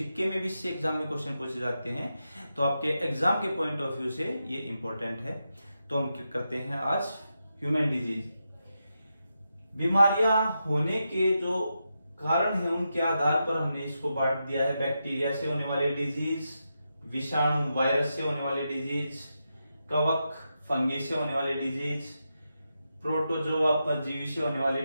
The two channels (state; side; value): inverted; both; correlation -0.87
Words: में भी इससे एग्जाम में क्वेश्चन पूछे जाते हैं तो आपके एग्जाम के पॉइंट ऑफ व्यू से ये इंपॉर्टेंट है। तो हम क्या करते हैं आज ह्यूमन डिजीज। बीमारियां होने के जो कारण है उनके आधार पर हमने इसको बांट दिया है। बैक्टीरिया से होने वाली डिजीज, विषाणु वायरस से होने वाली डिजीज, कवक फंगी से होने वाली डिजीज, प्रोटोजोआ परजीवी से होने वाली